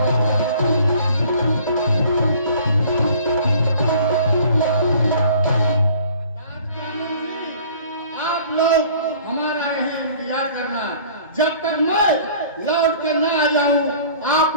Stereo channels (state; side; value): inverted; both; correlation -0.51